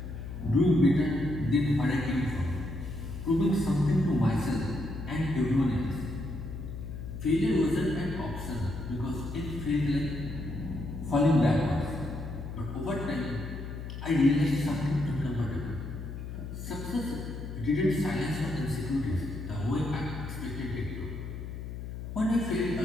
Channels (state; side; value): noise; left; hum, 8 dB below the sound